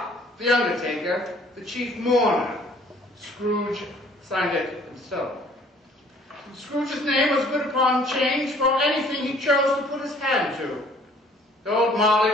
the undertaker, the chief mourner. Scrooge signed it himself. Scrooge's name was good upon change for anything he chose to put his hand to. The old Marley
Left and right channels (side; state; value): both; normal; correlation 0.56